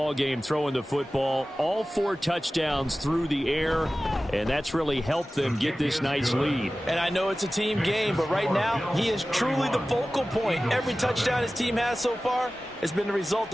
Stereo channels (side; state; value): both; normal; correlation 0.96